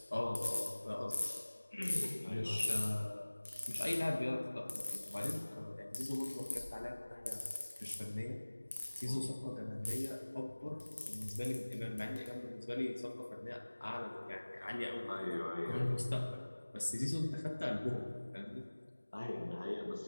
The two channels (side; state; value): both; inverted; correlation -1.00